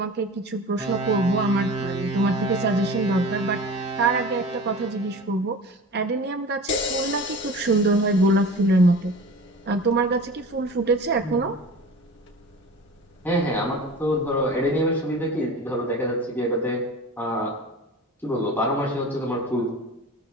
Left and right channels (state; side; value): normal; both; correlation 0.36